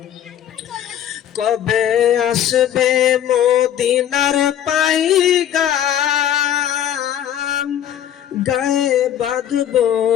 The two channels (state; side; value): quieter; right; 10.5 dB